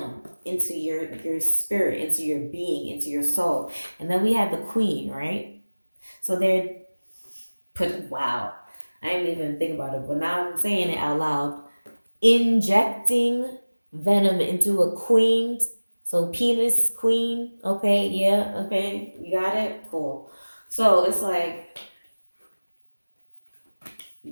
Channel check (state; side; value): inverted; both; correlation -1.00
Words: into your spirit, into your being, into your soul. And then we have the queen, right? So they're wow, I didn't even think about it, but now I'm saying it out loud. Injecting venom into a queen. So penis queen. Okay, yeah, okay, you got it. Cool. So it's like